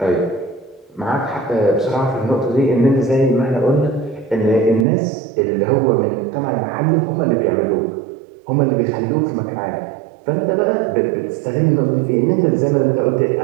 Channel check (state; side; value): drops out; left; at 4.9 s